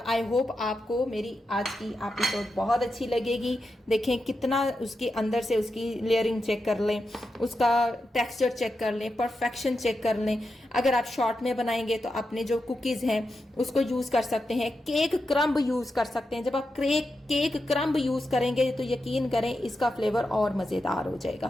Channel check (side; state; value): both; normal; correlation 0.88